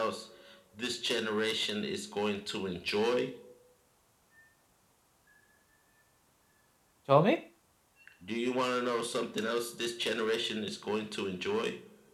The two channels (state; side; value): identical; both; correlation 1.00